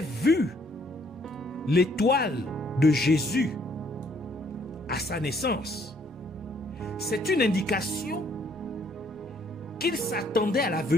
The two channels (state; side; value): normal; both; correlation 0.65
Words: vu l'étoile de Jésus à sa naissance, c'est une indication qu'ils s'attendaient à la